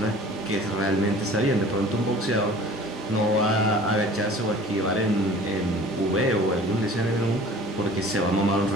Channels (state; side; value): normal; both; correlation 0.46